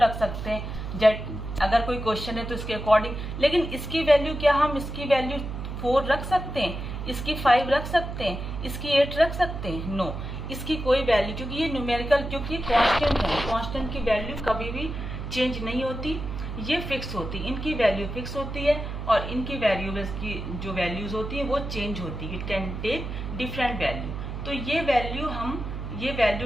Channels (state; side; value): noise; right; hum, 6 dB below the sound